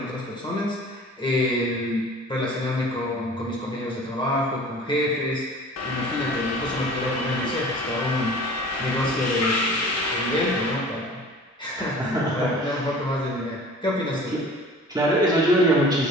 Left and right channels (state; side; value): normal; both; correlation 0.44